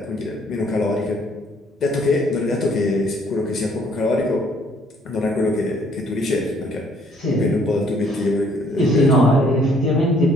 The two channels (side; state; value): both; normal; correlation 0.63